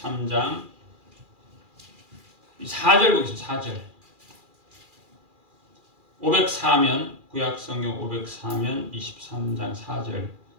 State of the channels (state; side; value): late; left; 2.4 ms